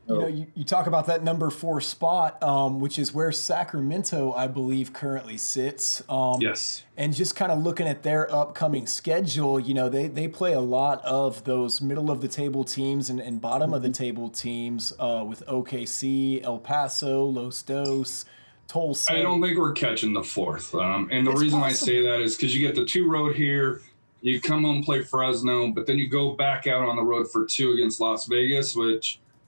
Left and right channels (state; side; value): inverted; both; correlation -1.00